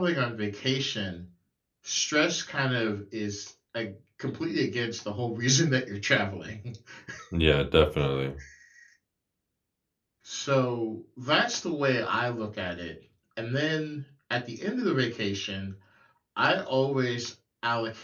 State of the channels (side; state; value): both; identical; correlation 1.00